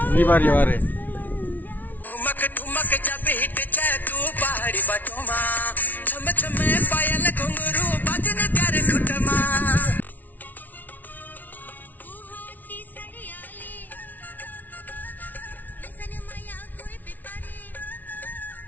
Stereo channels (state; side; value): late; right; 0.081 ms